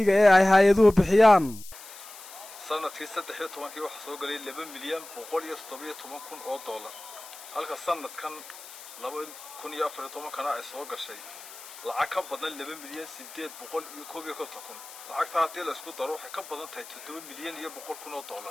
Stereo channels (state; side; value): noise; left; hiss, 16 dB below the sound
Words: ee ay hay'aduhu bixiyaan sanadkii 13 waxa soo galay 2 milyan 117 kun oo dollar halka sanadkan 2014 kana ay soo gashay lacag ka badan 2 milyan 851 kun lacagta hadii la isku daro waxay ka badan tahay 7 milyan iyo 100 kun oo